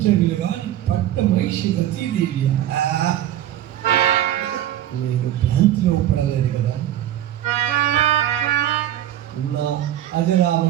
గాని పట్ట మహిషి రతీదేవి నేను భ్రాంతిలో పడలేదు కదా. నా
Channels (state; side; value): quieter; left; 12.1 dB